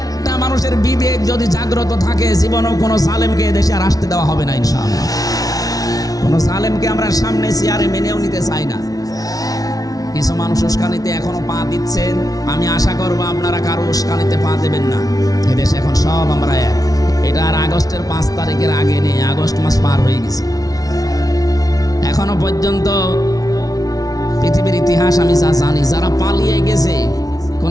মানুষের বিবেক যদি জাগ্রত থাকে, জীবনেও কোনো জালেমকে এদেশে আর আসতে দেওয়া হবে না ইনশাআল্লাহ। কোনো জালেমকে আমরা সামনে চেয়ারে মেনেও নিতে চাই না। কিছু মানুষ উস্কানিতে এখনো পা দিচ্ছেন, আমি আশা করবো আপনারা কারো উস্কানিতে পা দেবেন না। এদেশে এখন সব আমরা এক। এটা আর আগস্টের 5 তারিখের আগে নেই, আগস্ট মাস পার হয়ে গেছে। এখনো পর্যন্ত পৃথিবীর ইতিহাস আমি যা জানি, যারা পালিয়ে গেছে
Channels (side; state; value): right; late; 0.18 ms